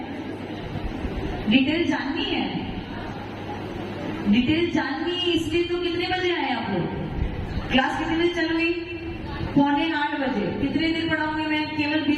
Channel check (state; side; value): identical; both; correlation 1.00